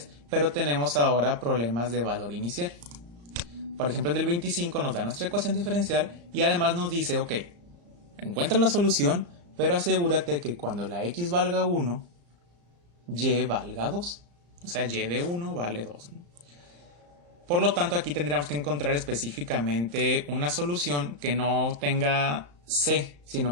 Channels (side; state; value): left; late; 34 ms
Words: pero tenemos ahora problemas de valor inicial. Por ejemplo, en el 25 nos da nuestra ecuación diferencial y además nos dice, ok, encuentra la solución, pero asegúrate que cuando la x valga 1, y valga 2. O sea, y de 1 vale 2, ¿no? Por lo tanto, aquí tendríamos que encontrar específicamente una solución que no tenga c,